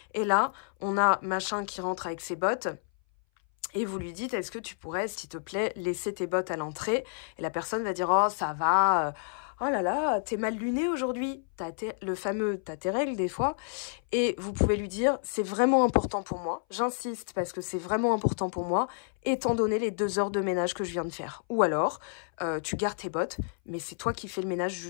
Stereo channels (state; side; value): silent; right; 58 dB below the other